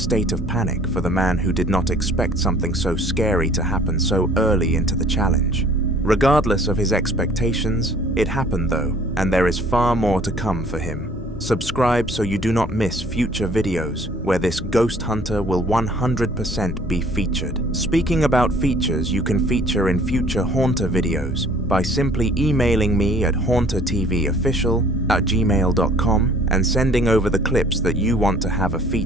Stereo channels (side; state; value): both; normal; correlation 0.55